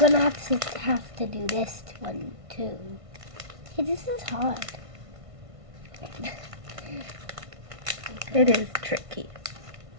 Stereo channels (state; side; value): late; left; 1.5 ms